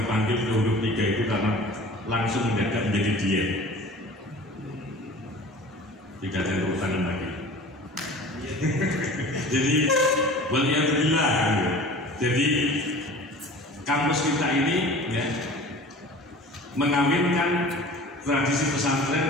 ke huruf 3 itu karena langsung mendadak menjadi diet, tidak ada urusan lagi. Jadi waliyadzubillah gitu. Jadi kampus kita ini ya, mengawinkan tradisi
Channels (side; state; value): both; normal; correlation 0.41